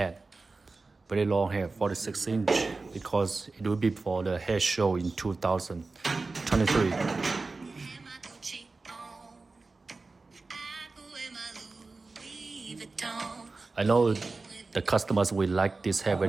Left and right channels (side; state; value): left; quieter; 3.7 dB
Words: Very long hair, 46 inch, because it will be for the hair show in 2023. I know the customers will like this hair